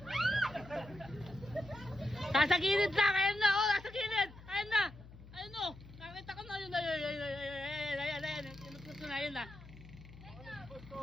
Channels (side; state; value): left; noise; hum, 18 dB below the sound